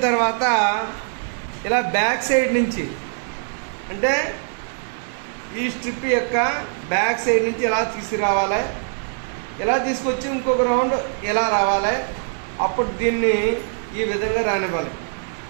తర్వాత ఇలా బ్యాక్ సైడ్ నుంచి, అంటే ఈ స్ట్రిప్ యొక్క బ్యాక్ సైడ్ నుంచి ఇలా తీసుకురావాలి. ఇలా తీసుకొచ్చి ఇంకొక రౌండ్ ఇలా రావాలి. అప్పుడు దీన్ని ఈ విధంగా రానివ్వాలి.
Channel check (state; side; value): silent; left; 63 dB below the other